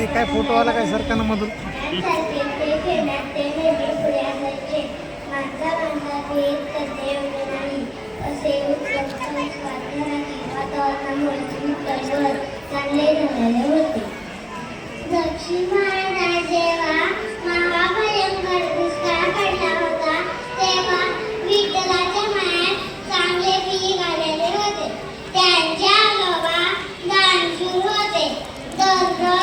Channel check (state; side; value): identical; both; correlation 1.00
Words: काय फोटो आला काय सरकारनं मधून. दक्षिण भारतात जेव्हा महाभयंकर दुष्काळ पडला होता तेव्हा विठ्ठलाच्या मायात चांगले पीक आलेले होते. त्यांच्या आजोबा दानशूर होते.